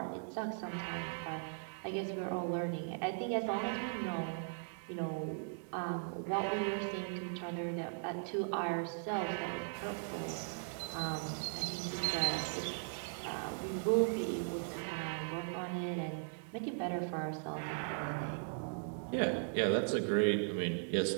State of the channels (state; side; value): silent; left; digital silence